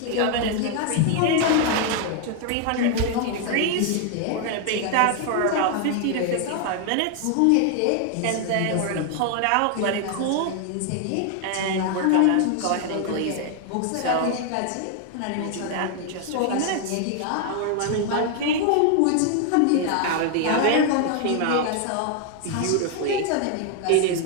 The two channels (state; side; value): different; both; correlation 0.00